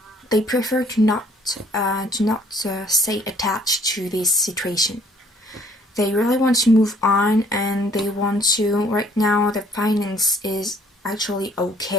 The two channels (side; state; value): both; normal; correlation 0.60